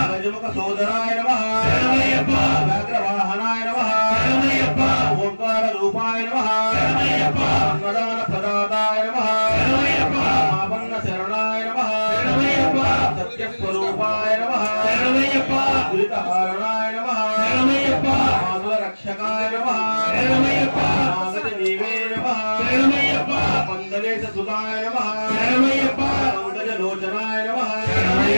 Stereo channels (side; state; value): both; inverted; correlation -1.00